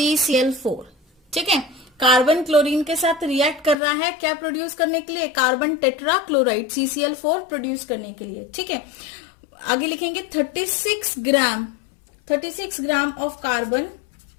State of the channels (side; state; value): right; drops out; at 3.8 s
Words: ठीक है, कार्बन क्लोरीन के साथ रिएक्ट कर रहा है क्या प्रोड्यूस करने के लिए, carbon tetra chloride CCl4 produce करने के लिए। ठीक है, आगे लिखेंगे 36 gram of carbon